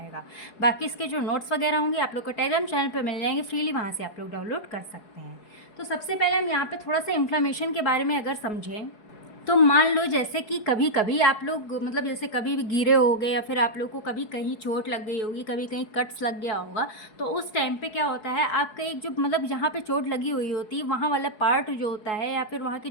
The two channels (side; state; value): right; late; 4.7 ms